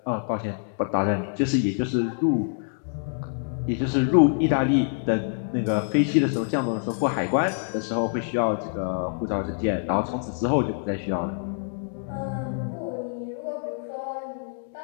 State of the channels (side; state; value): right; silent; digital silence